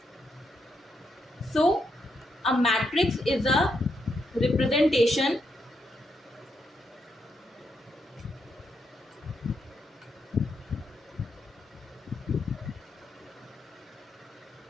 So a matrix is a representation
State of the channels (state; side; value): normal; both; correlation 0.80